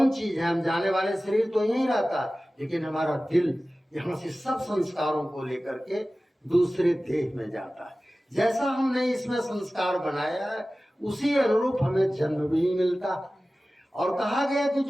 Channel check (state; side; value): normal; both; correlation 0.96